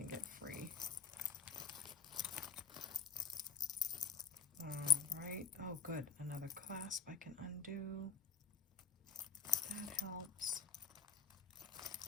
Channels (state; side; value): quieter; right; 5.8 dB